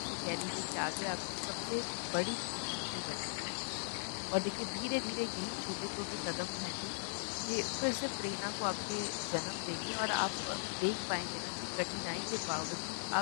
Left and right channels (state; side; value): silent; right; 52 dB below the other